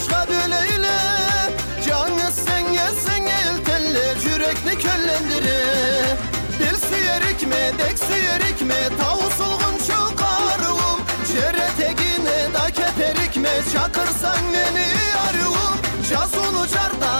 böleyle. Canı sen el teller, yürekni köllendire. Dil süyerik mi, dek süyerik mi, tavusulgun şu karıvım. Jere tegine da keterik mi, çakırsan beni arıvım. Jazunu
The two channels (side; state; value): both; inverted; correlation -1.00